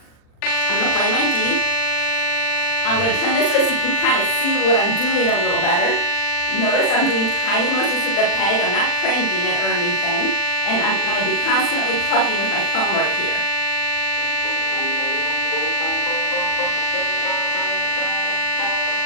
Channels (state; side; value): late; right; 40 ms